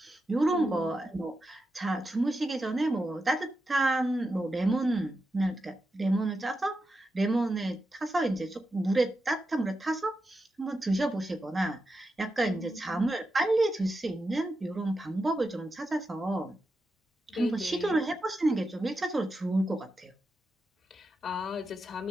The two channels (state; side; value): normal; both; correlation 0.88